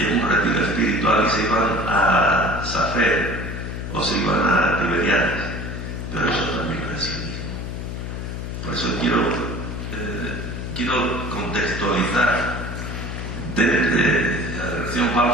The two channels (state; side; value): noise; left; hum, 6 dB below the sound